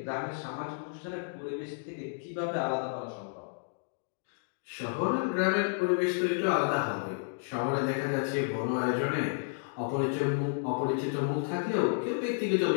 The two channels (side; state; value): right; silent; digital silence